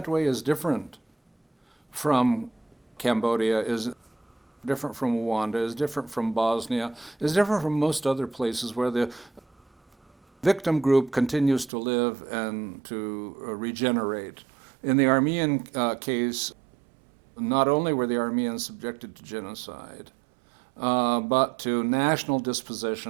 way is different from Cambodia, is different from Rwanda, is different from Bosnia, is different from most other places where the victim group continues to live and to regenerate. In the Armenian case, not only were the Armenians subjected to genocide, but to national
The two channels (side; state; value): left; drops out; at 11.7 s